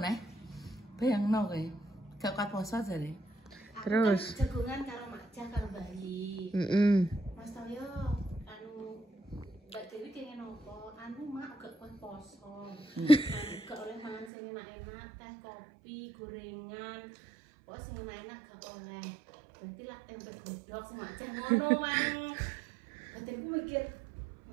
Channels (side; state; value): left; drops out; at 14.3 s